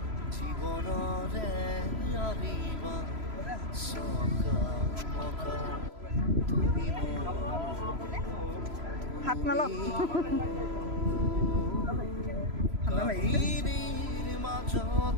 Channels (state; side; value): late; left; 3.0 ms